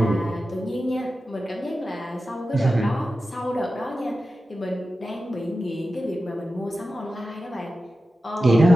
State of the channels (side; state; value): both; normal; correlation 0.93